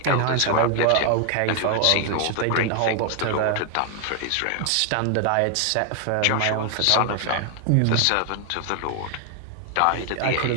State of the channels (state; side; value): different; both; correlation 0.00